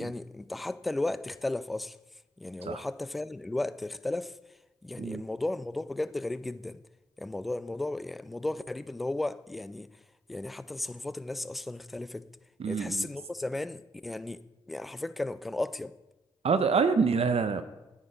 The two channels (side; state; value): both; normal; correlation 0.74